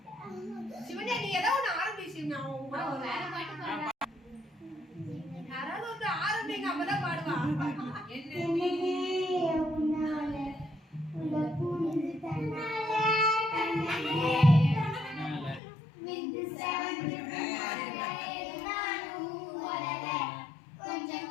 சிவனே நீ ஏதோ ஒன்று ஆரம்பிச்சு யாராவது வந்து ஆரம்பிங்க அப்பதான் பாடுவா கொஞ்சம்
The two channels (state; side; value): drops out; right; at 15.6 s